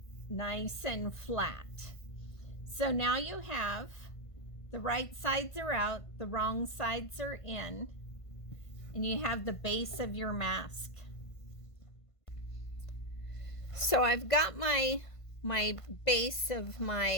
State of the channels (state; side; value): late; right; 1.5 ms